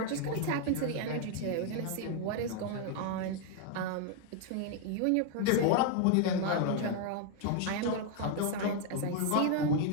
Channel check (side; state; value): both; different; correlation 0.00